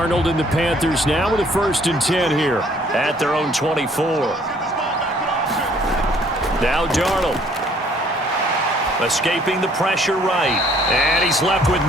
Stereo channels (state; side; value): normal; both; correlation 0.61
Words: and the Panthers now with a 1st and 10 here at their own 24. Now Darnold escaping the pressure right, and he's left with